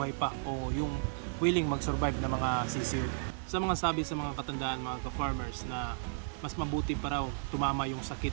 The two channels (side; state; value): left; silent; digital silence